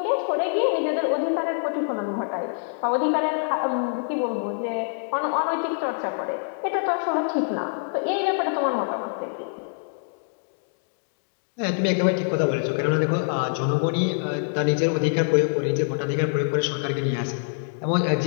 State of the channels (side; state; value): right; silent; digital silence